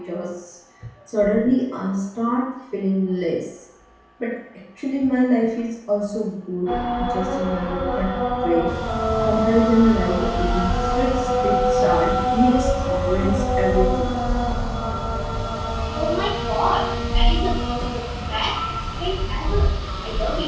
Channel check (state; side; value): identical; both; correlation 1.00